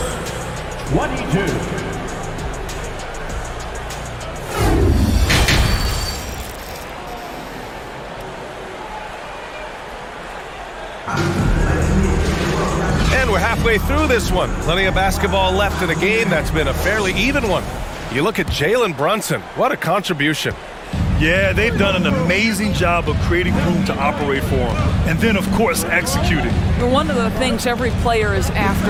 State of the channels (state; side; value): identical; both; correlation 1.00